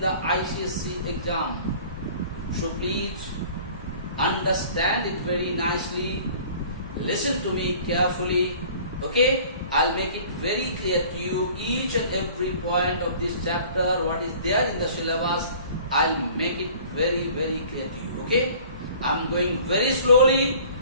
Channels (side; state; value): both; inverted; correlation -0.48